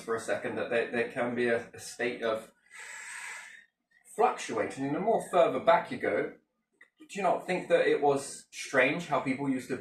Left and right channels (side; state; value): both; identical; correlation 1.00